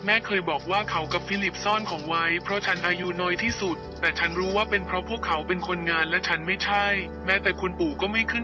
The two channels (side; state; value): both; identical; correlation 1.00